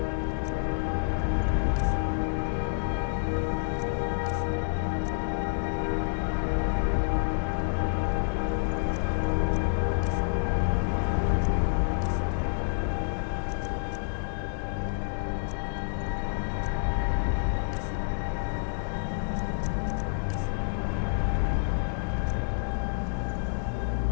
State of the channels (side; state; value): right; silent; digital silence